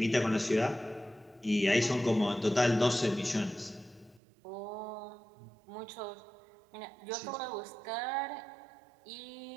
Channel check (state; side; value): drops out; left; at 4.2 s